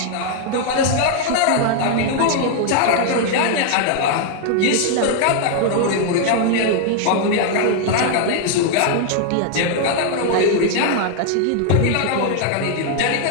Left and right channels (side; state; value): both; different; correlation 0.00